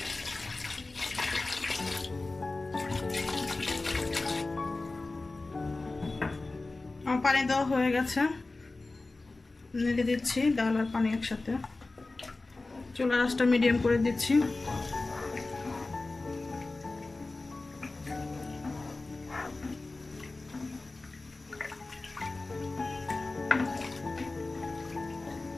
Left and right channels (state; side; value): quieter; right; 3.3 dB